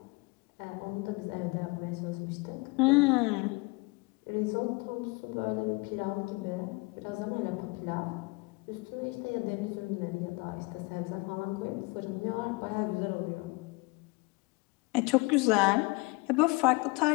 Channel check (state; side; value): quieter; right; 26.1 dB